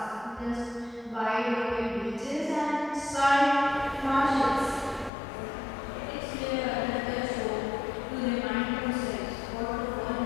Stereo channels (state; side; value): drops out; right; at 5.1 s